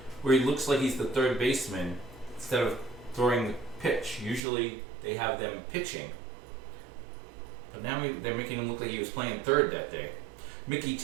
where he looks like he's the third baseman instead of throwing the pitch. Usually they have them pitching, but now they're making him look like he was playing third that day. Mickey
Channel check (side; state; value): left; drops out; at 4.4 s